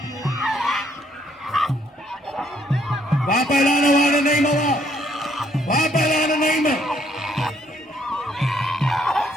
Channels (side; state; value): both; normal; correlation 0.68